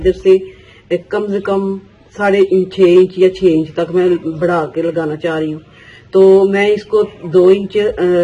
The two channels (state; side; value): identical; both; correlation 1.00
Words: से कम से कम 6.5 इंच या 6 इंच तक मैं बढ़ा के लगाना चाह रही हूँ। तो मैं इसको 2 इंच